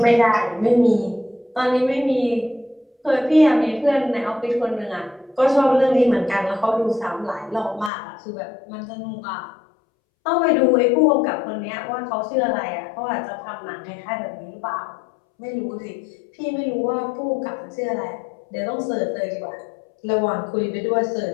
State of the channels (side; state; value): right; drops out; at 7.9 s